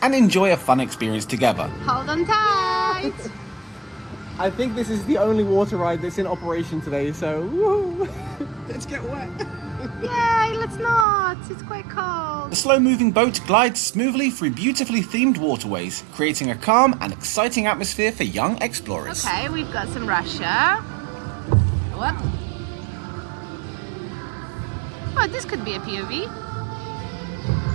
and enjoy a fun experience together. Hold on tight! I think this is the only water ride that's in operation today, so woo! Let's get wet. Yay, let's not! It's quite cold. The slow-moving boat glides smoothly through beautifully themed waterways, creating a calm and exciting atmosphere for young explorers. Okay, we've got some Russia. What? Oh, this could be a POV.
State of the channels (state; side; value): drops out; left; at 11.1 s